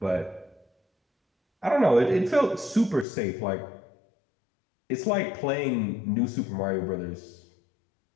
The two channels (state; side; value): drops out; right; at 3.1 s